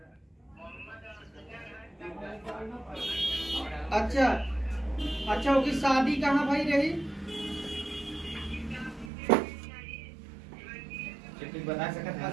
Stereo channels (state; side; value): drops out; left; at 9.1 s